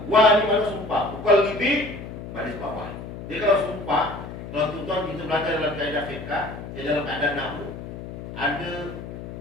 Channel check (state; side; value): noise; left; hum, 10 dB below the sound